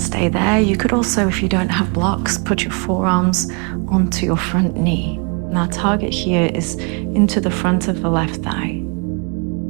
there. You could also, if you don't have blocks, put your forearms onto your front knee. Now target here is into the front of the left thigh.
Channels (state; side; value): quieter; left; 33.7 dB